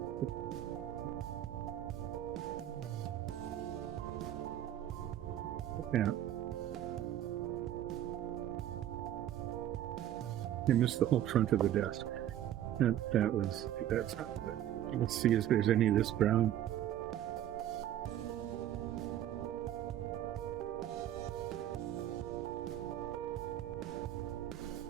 Yeah. I missed the whole front of the desk. That's not good. Let's see if there's any of this brown.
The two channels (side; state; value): left; quieter; 11.8 dB